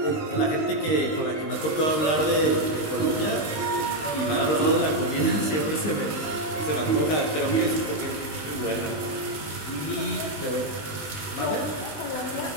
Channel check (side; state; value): right; late; 19 ms